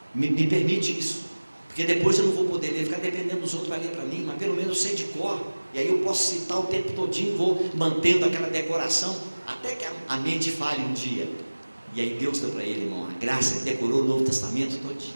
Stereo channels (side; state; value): both; inverted; correlation -1.00